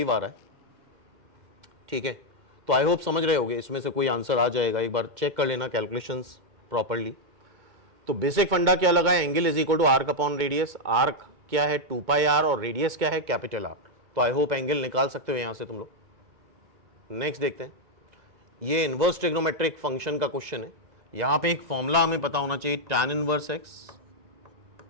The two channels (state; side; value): late; left; 2.2 ms